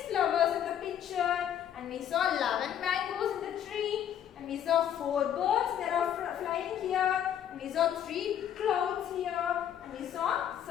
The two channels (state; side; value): quieter; right; 9.9 dB